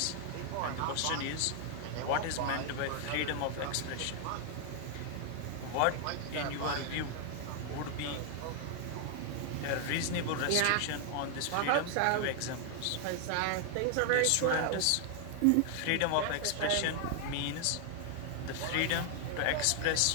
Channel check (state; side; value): different; both; correlation 0.00